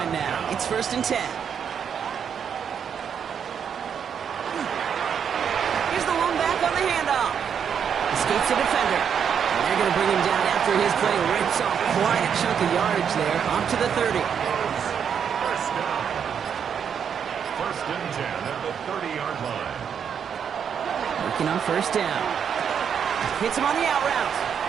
now. It's 1st and 10. Here's the one back on the handoff. Escapes the defender. And they're going to bring him down after after his play rips off quite a chunk of yardage there, up to the 30. First down. First and 10 at the 30-yard line. Working on first down. Hits him on the out route.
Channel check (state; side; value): quieter; left; 7.6 dB